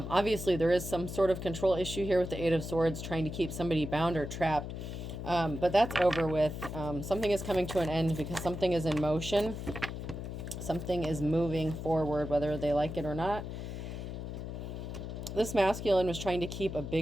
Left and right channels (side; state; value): left; noise; hum, 7 dB below the sound